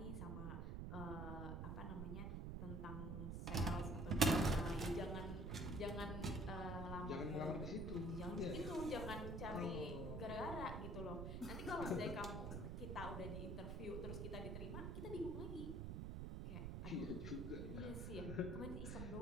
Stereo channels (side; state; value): right; noise; rumble, 3 dB below the sound